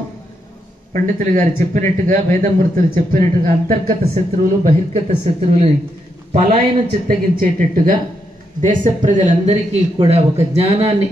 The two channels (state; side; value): normal; both; correlation 0.81